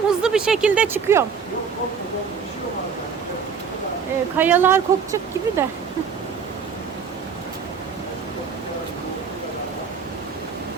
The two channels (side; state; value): left; quieter; 6.3 dB